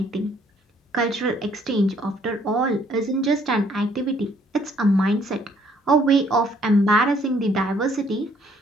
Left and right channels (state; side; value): normal; both; correlation 0.64